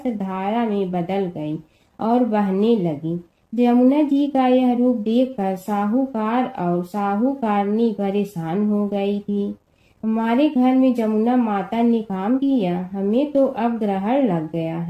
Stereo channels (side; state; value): both; identical; correlation 1.00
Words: धारा में बदल गई और बहने लगी। जमुना जी का यह रूप देखकर साहूकार और साहूकारनी परेशान हो गई थी। हमारे घर में जमुना माता ने काम किया, हमें तो अब ग्रहण लग गया